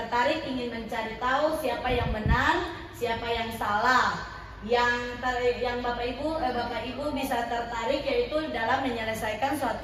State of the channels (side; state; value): both; identical; correlation 1.00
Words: ingin mencari tahu siapa yang benar, siapa yang salah. Yang Bapak Ibu bisa tertarik yaitu dalam menyelesaikan